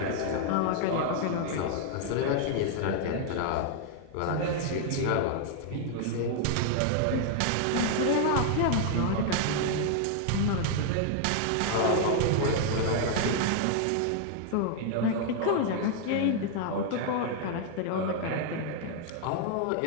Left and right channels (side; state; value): both; different; correlation 0.00